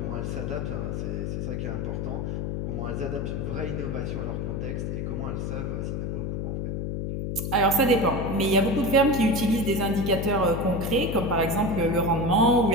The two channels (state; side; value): noise; left; hum, 2 dB below the sound